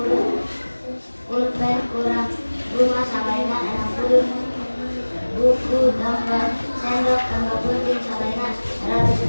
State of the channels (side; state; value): both; inverted; correlation -1.00